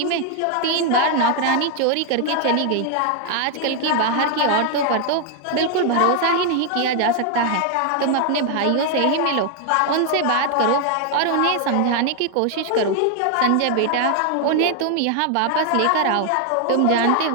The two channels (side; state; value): both; different; correlation 0.00